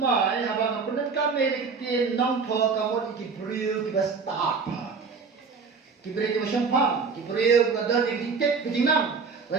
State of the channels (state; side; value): quieter; left; 5.1 dB